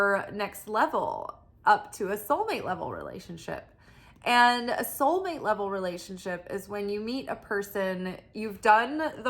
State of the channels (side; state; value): both; identical; correlation 1.00